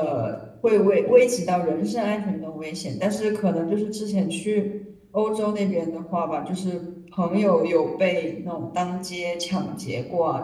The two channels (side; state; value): both; identical; correlation 1.00